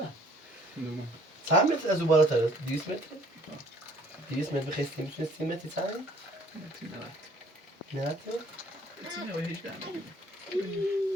300 متر از او بالاتر 200 متر. 200 متر بخیستی میتونی 30 متر تایی؟ نه. تینه و هیچ دارم.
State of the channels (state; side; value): normal; both; correlation 0.57